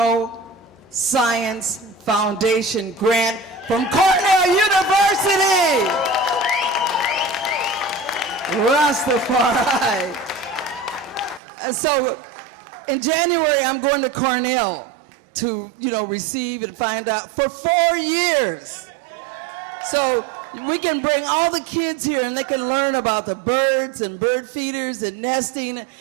Science Foundation grant from Cornell University. Rastafari. And so in January, I'm going to Cornell to, receive and find out for 4 years. So we can bring all the kids here and they can learn about the birds and bird feeders and nesting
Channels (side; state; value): left; drops out; at 11.4 s